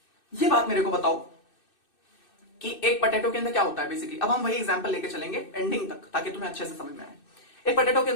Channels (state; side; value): late; right; 2.6 ms